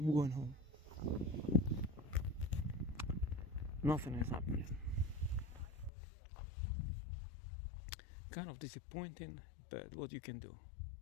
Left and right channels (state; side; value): drops out; right; at 5.9 s